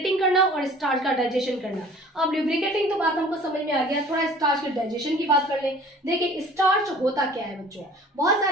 करना और स्टार्च का डाइजेशन करना। अब ल्यूब्रिकेटिंग तो बात हमको समझ में आ गया, थोड़ा स्टार्च के डाइजेशन की बात कर ले। देखिए स्टार्च होता क्या है बच्चों, बहुत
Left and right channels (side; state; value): both; normal; correlation 0.48